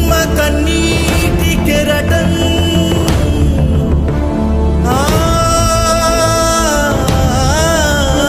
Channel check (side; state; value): both; identical; correlation 1.00